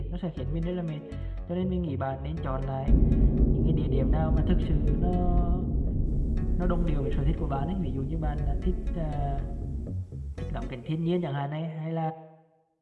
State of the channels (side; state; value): both; identical; correlation 1.00